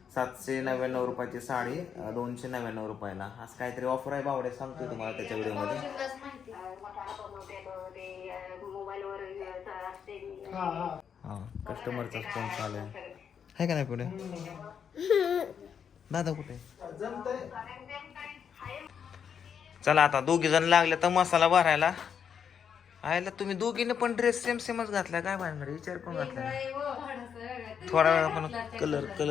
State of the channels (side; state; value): right; quieter; 7.5 dB